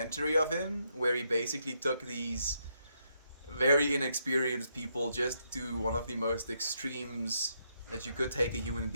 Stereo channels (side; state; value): both; inverted; correlation -0.78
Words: of him, where he basically took these very inexperienced people just to one of the most extremes that you could take a human